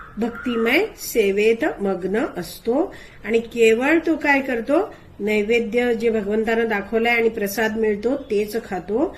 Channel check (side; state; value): both; identical; correlation 1.00